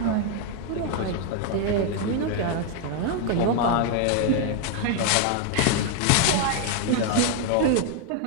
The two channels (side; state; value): both; different; correlation 0.00